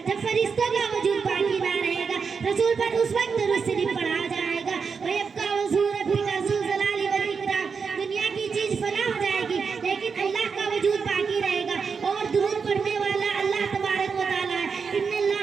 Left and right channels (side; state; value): left; quieter; 5.6 dB